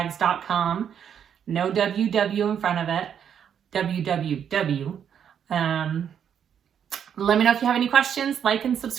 No WW in front of it. www. Let me know if you have any questions. Like and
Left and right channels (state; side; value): quieter; left; 8.4 dB